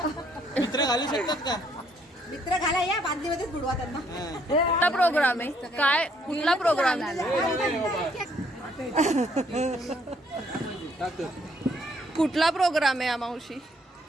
मित्र घालू शकतात का? मित्र घाला या बादलीमध्येच बुडवा त्यांना. कुठला प्रोग्राम आहे काय कुठला प्रोग्राम कुठला प्रोग्राम आहे मावशी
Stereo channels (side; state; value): both; normal; correlation 0.67